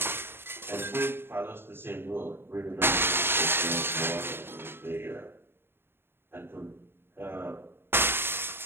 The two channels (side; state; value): left; late; 0.11 ms